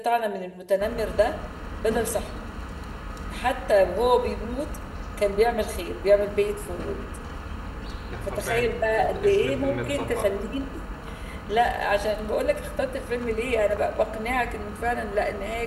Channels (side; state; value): both; identical; correlation 1.00